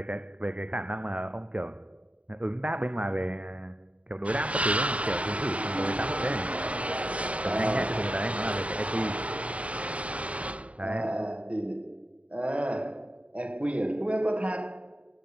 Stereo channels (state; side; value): late; left; 0.065 ms